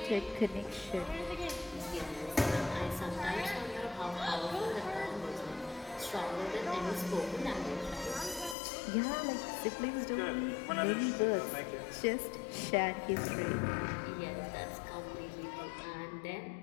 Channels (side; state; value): right; drops out; at 8.6 s